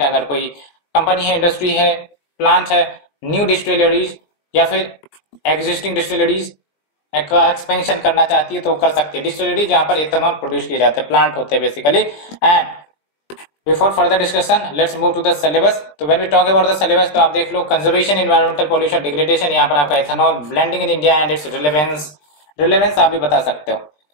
अगर कोई कंपनी है, इंडस्ट्री है, प्लांट है, न्यू डिस्टिलरीज या फिर एग्जिस्टिंग डिस्टिलरीज का एक्सपेंशन करना चाहती है तो कर सकती है। डिस्टिलरी जहां पर इथेनॉल प्रोड्यूस किए जाते हैं, प्लांट होते हैं basically. And before further discussion let's move to the syllabus. तो when we talk about the syllabus तो आप देख लो कंजर्वेशन, एनवायरमेंटल पॉल्यूशन, डिग्रेडेशन, यहाँ पर आपका ethanol blending in India and its relevance आप भी बता सकते हो।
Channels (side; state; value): right; late; 20 ms